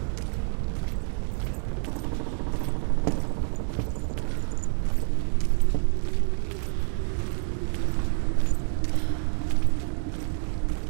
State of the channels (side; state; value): left; silent; 60 dB below the other